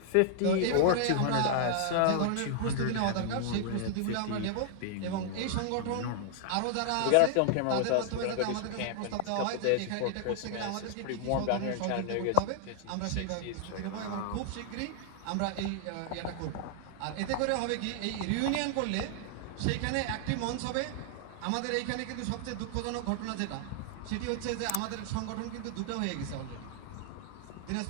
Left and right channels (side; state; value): both; different; correlation 0.00